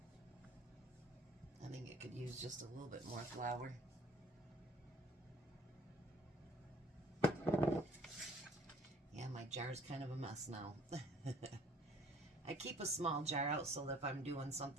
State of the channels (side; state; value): both; normal; correlation 0.55